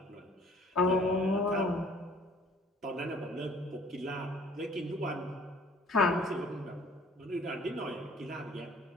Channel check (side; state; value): both; normal; correlation 0.54